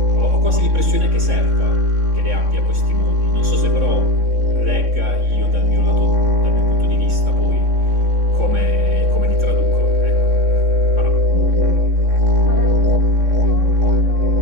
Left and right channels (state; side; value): late; left; 3.6 ms